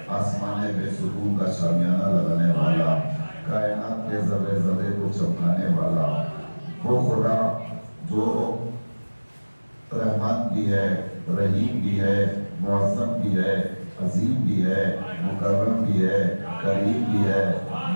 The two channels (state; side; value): inverted; both; correlation -1.00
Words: آسمانے بے سکون کا شامیانہ لگانے والا، کائنات کے ذرے ذرے کو چمکانے والا، وہ خدا جو رحمان بھی ہے، رحیم بھی ہے، معظم بھی ہے، عظیم بھی ہے، مکرم بھی ہے، کریم بھی ہے،